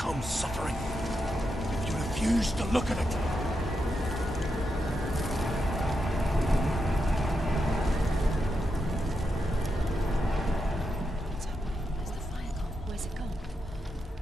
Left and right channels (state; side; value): normal; both; correlation 0.85